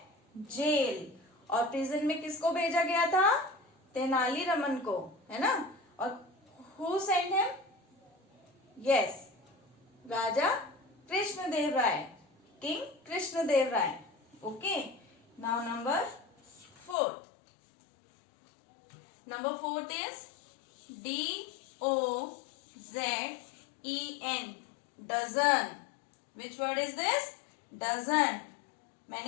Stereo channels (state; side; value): drops out; right; at 16.9 s